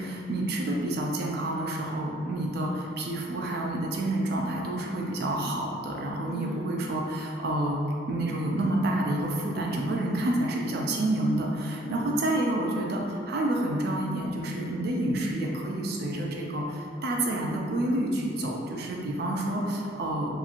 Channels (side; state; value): both; normal; correlation 0.60